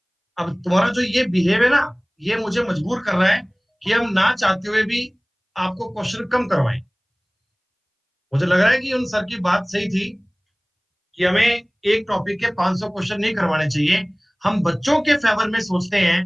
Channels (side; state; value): both; identical; correlation 1.00